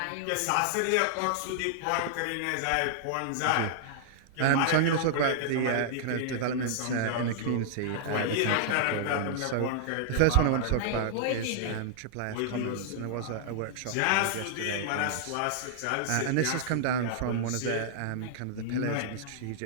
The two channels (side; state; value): both; different; correlation -0.01